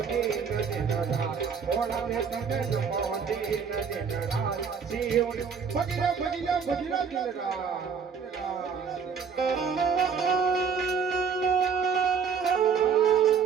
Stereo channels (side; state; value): left; quieter; 6.4 dB